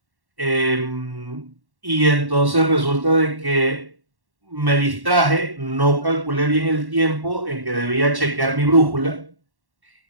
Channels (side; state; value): left; late; 1.1 ms